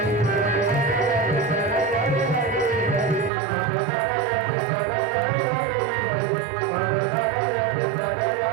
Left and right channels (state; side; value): drops out; left; at 3.3 s